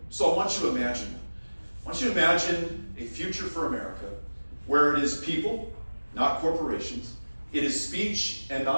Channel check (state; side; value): inverted; both; correlation -1.00